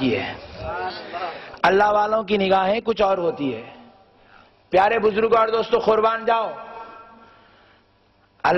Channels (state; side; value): identical; both; correlation 1.00